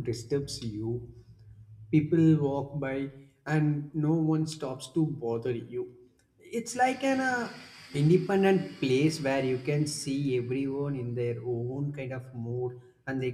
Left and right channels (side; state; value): both; identical; correlation 1.00